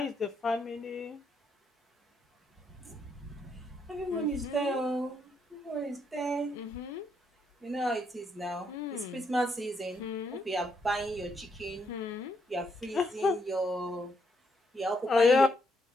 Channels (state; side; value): normal; both; correlation 0.75